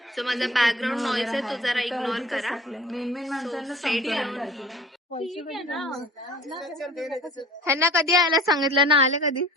So माझा background noise आहे तो जरा इग्नोर करा. ह्यांना कधी यायला सांगितलं ना, आले कधी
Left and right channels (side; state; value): both; normal; correlation 0.45